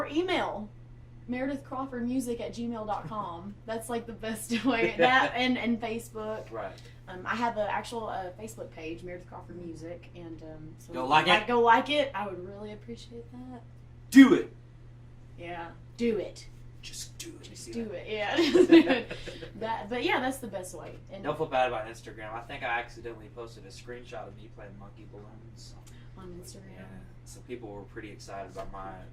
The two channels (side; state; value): both; identical; correlation 1.00